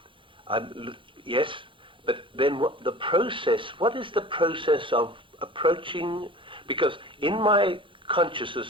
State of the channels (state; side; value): late; left; 0.25 ms